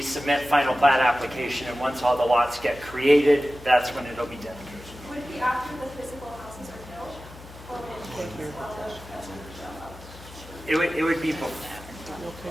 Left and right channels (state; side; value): noise; left; hum, 17 dB below the sound